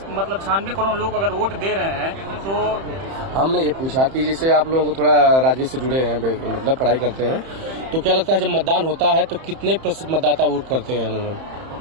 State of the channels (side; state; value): left; late; 31 ms